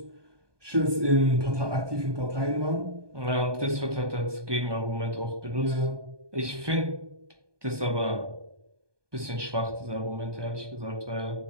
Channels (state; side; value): late; left; 1.2 ms